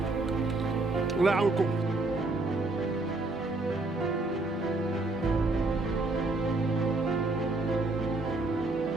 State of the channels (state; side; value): quieter; left; 3.0 dB